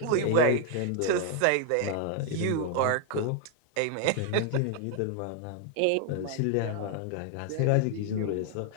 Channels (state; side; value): different; both; correlation 0.00